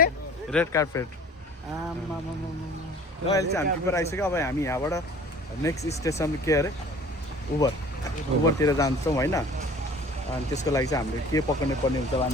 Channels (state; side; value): normal; both; correlation 0.47